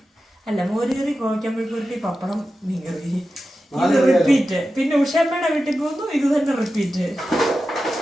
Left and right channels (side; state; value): both; normal; correlation 0.92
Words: മോരുകറി, കോഴിക്കമ്പഴക്കുരുട്ടി, പപ്പടം, മീൻകറി. ഇത് റിപ്പീറ്റ്. പിന്നെ ഉഷമ്മയുടെ വീട്ടിൽ പോകുന്നു, ഇത് തന്നെ റിപ്പീറ്റ്.